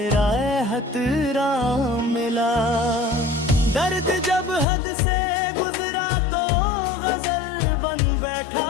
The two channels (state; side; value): drops out; right; at 4.7 s